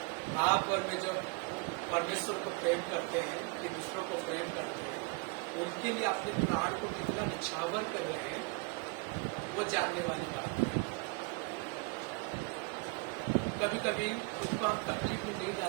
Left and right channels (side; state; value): left; quieter; 29.5 dB